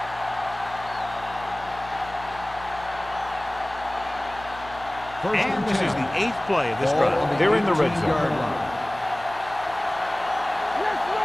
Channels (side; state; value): left; noise; hum, 18 dB below the sound